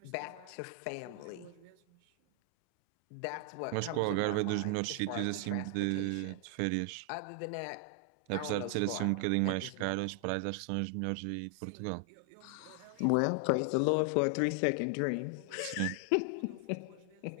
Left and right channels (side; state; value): both; different; correlation 0.00